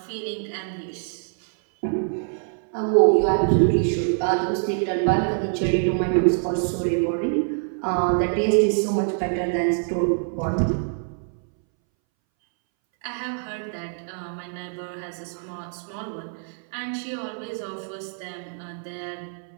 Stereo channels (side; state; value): left; silent; 62 dB below the other